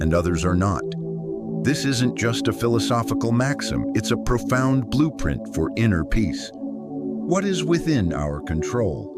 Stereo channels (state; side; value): identical; both; correlation 1.00